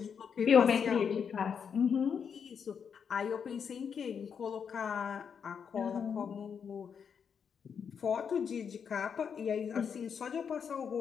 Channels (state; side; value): quieter; right; 6.9 dB